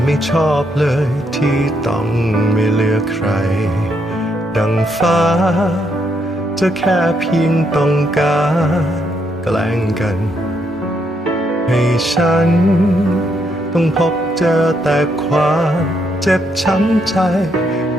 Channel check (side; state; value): both; normal; correlation 0.76